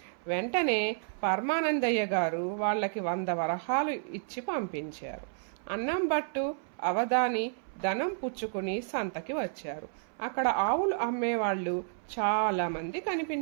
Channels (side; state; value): left; silent; 57 dB below the other